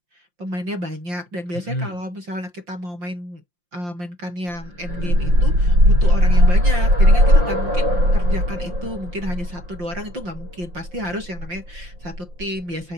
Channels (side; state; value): left; late; 5.7 ms